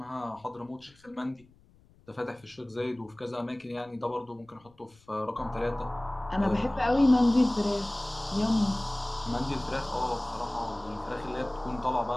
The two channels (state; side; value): noise; left; rumble, 29 dB below the sound